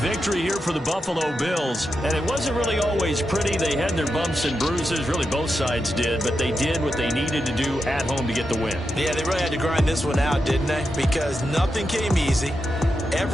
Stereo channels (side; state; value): both; normal; correlation 0.87